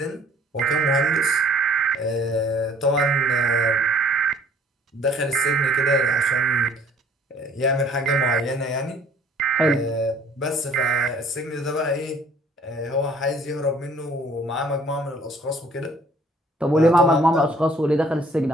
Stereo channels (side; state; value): both; normal; correlation 0.56